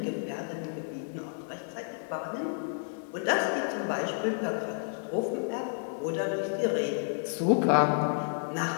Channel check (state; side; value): silent; right; 56 dB below the other